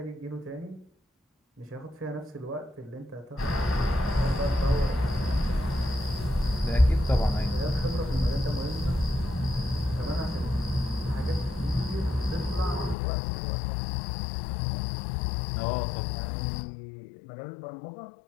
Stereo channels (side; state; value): right; drops out; at 13.0 s